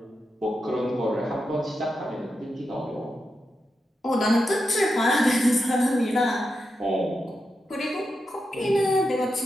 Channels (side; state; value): both; normal; correlation 0.88